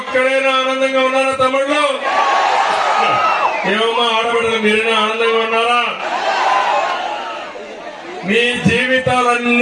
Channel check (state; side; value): identical; both; correlation 1.00